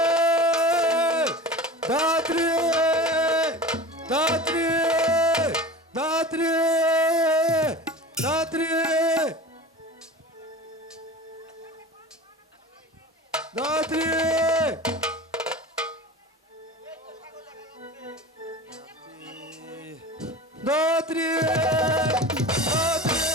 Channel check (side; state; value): both; normal; correlation 0.35